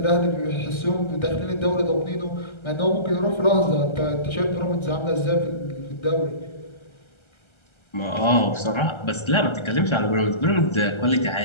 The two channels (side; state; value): right; late; 1.3 ms